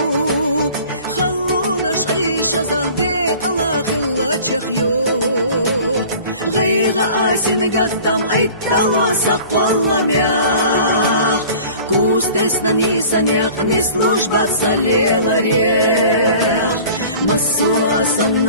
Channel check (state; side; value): inverted; both; correlation -0.45